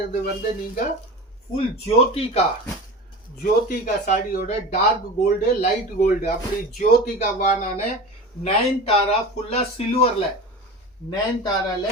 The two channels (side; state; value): both; normal; correlation 0.32